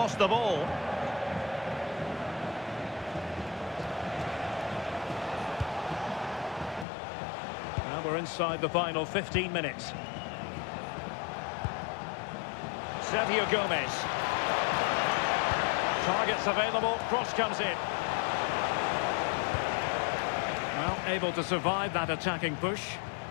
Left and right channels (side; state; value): right; drops out; at 6.9 s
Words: the ball. Now we're inside the final 15 minutes. Sergio Gomez. Targets available, cross comes in. Well, able to survive that attacking push.